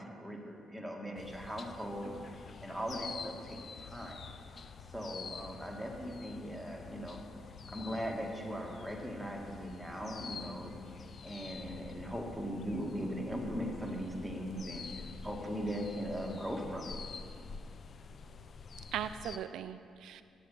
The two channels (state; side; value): normal; both; correlation 0.78